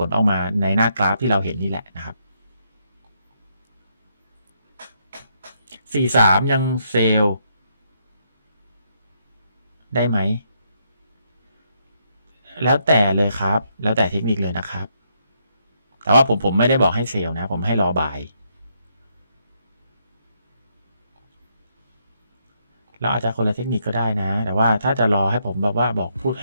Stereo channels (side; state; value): both; inverted; correlation -0.76